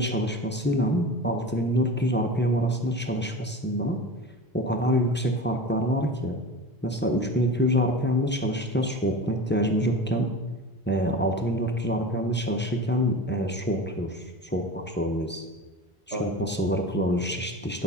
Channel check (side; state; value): both; normal; correlation 0.32